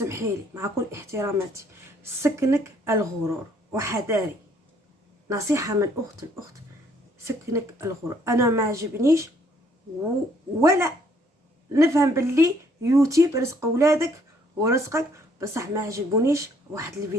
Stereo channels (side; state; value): both; normal; correlation 0.65